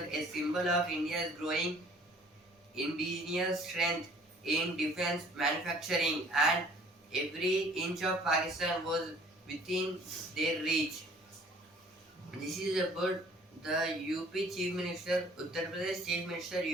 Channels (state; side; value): normal; both; correlation 0.54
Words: a symbol of India's growing indigenous strength in defense manufacturing, and every inch of Pakistan was within their reach. This is about the UP Chief Minister, Uttar Pradesh Chief Minister